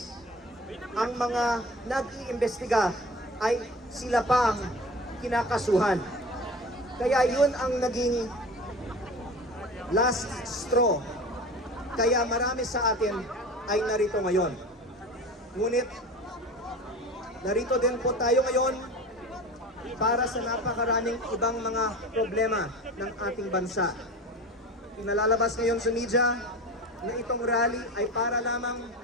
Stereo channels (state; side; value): normal; both; correlation 0.34